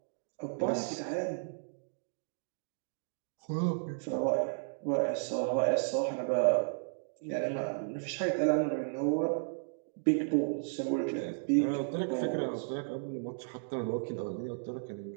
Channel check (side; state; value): left; silent; digital silence